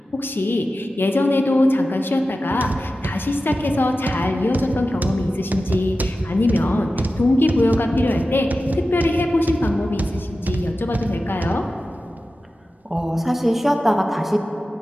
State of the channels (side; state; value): both; normal; correlation 0.94